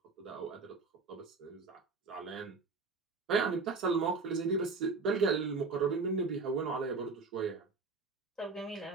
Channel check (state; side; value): quieter; left; 4.3 dB